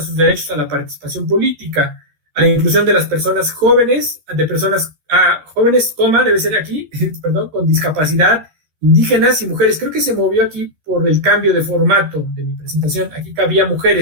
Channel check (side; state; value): left; late; 13 ms